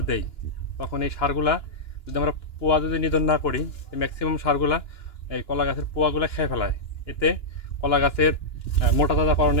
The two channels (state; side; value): late; right; 2.9 ms